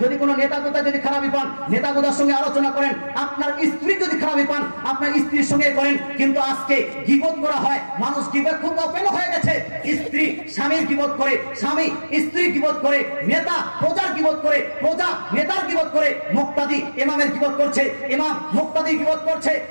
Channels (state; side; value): inverted; both; correlation -1.00